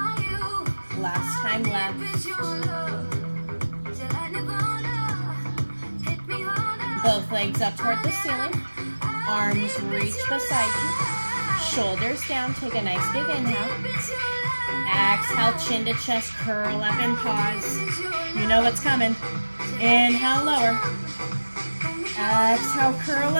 Last time left. Both legs up toward the ceiling. Arms reach beside you. Shoulders down, take a nice big inhale. Exhale, chin to chest, curl up and pause. You know what's coming. Inhale, lower. Exhale, curl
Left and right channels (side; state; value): both; inverted; correlation -1.00